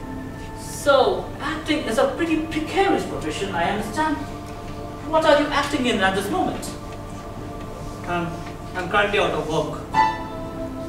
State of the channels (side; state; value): both; identical; correlation 1.00